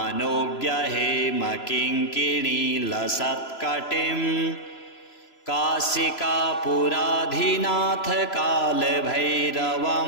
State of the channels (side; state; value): right; late; 3.0 ms